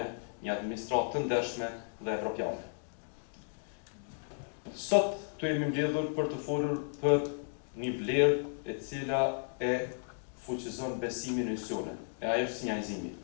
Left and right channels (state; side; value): silent; right; digital silence